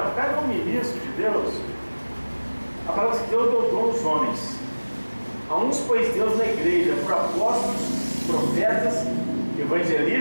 cada um ministro de Deus, a palavra que Deus deu dom aos homens. A uns pôs Deus na igreja por apóstolos, profetas,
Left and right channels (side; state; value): both; inverted; correlation -1.00